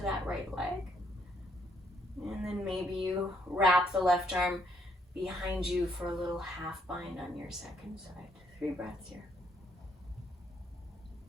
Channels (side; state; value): both; normal; correlation 0.71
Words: that right leg. And then maybe you wrap the left arm behind you for a little half bind on your second side. 3 breaths here.